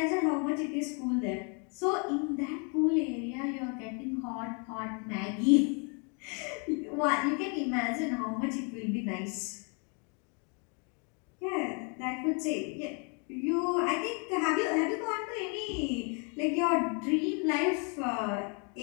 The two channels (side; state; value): right; quieter; 36.4 dB